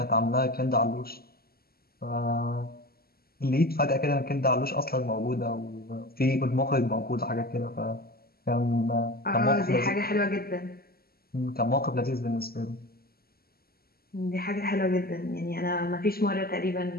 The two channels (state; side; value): late; right; 0.45 ms